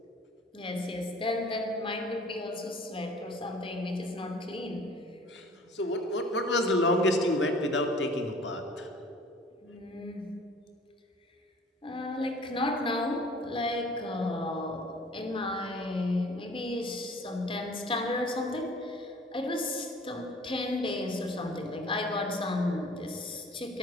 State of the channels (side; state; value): both; normal; correlation 0.49